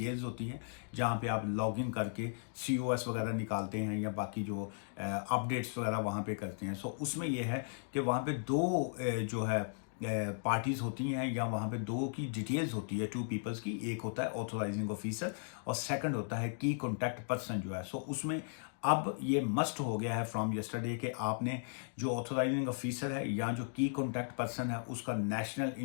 होती है जहाँ पे आप लॉगिन करके सीओएस वगैरह निकालते हैं या बाकी जो अपडेट्स वगैरह वहाँ पे करते हैं। सो उसमें यह है कि वहाँ पे दो जो है पार्टीज होती हैं या वहाँ पे दो की डिटेल्स होती है, टू पीपल्स की। एक होता है ऑथोराइजिंग ऑफिसर और सेकंड होता है की कॉन्टैक्ट पर्सन जो है। सो उसमें अब ये मस्ट हो गया है फ्रॉम यस्टरडे कि आपने जो ऑथोराइजिंग ऑफिसर है या जो की कॉन्टैक्ट पर्सन है उसका नेशनल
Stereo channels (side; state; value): right; silent; digital silence